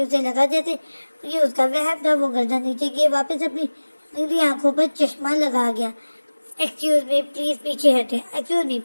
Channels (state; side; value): inverted; both; correlation -1.00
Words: उसे लगा जैसे ये उसका वहम था। वो गर्दन नीचे किए वापस अपनी नीली आंखों पर चश्मा लगा गया। एक्सक्यूज मी, प्लीज पीछे हटे। एक्सक्यूज मी,